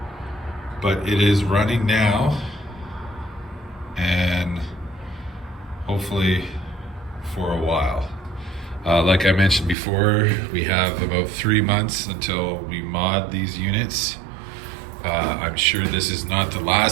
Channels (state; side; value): drops out; left; at 9.8 s